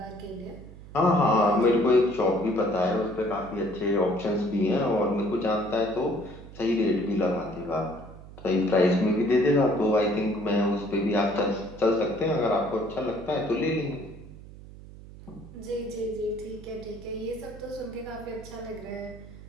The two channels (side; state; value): right; noise; hum, 17 dB below the sound